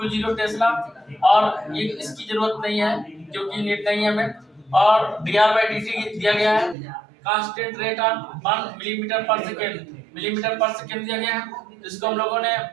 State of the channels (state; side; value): drops out; left; at 6.8 s